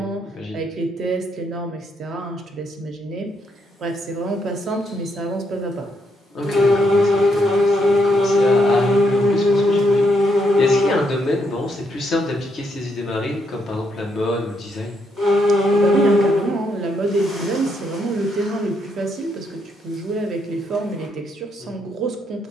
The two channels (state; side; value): normal; both; correlation 0.76